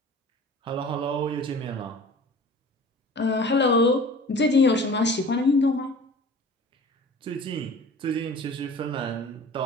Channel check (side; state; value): both; normal; correlation 0.43